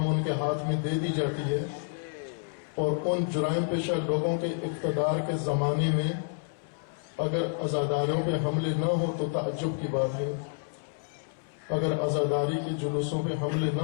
ان کے ہاتھ میں دے دی جاتی ہے، اور ان جرائم پیشہ لوگوں کے اقتدار کے زمانے میں اگر عزاداریوں پہ حملے نہ ہو تو تعجب کی بات ہے، اگر عزاداری کے جلوسوں پہ حملے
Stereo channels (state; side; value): silent; right; 58 dB below the other